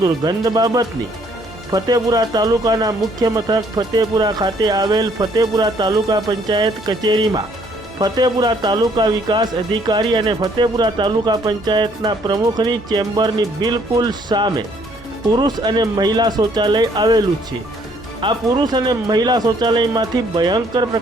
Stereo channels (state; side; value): normal; both; correlation 0.64